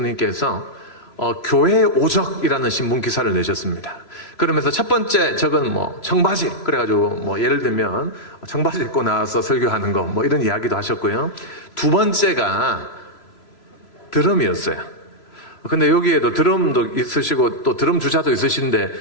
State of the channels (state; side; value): late; right; 3.0 ms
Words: 교회 오적이라는 신문 기사를 내셨습니다. 그러면서 첫 번째 적은 뭐 청바지 그래가지고 뭐 예를 들면 청바지 입고 나와서 설교하는 거 뭐 이런 이야기도 하셨고요. 두 번째가 드럼이었어요. 근데 여기에도 드럼도 있으시고 또 드럼 주자도 있으신데